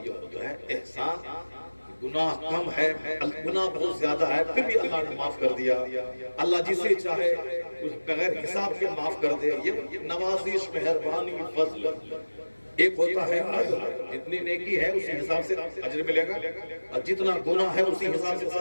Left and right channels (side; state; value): both; inverted; correlation -1.00